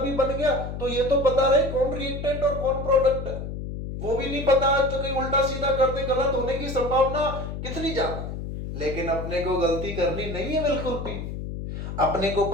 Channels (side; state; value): left; noise; hum, 6 dB below the sound